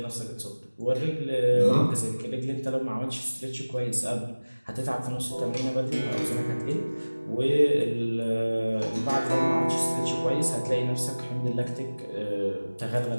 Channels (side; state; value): both; inverted; correlation -1.00